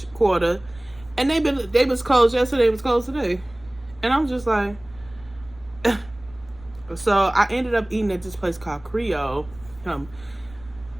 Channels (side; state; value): right; noise; rumble, 22 dB below the sound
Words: Quarter, and they was closed yesterday. It was closed today, and I'm just like. So I ended up eating at this place called Creole.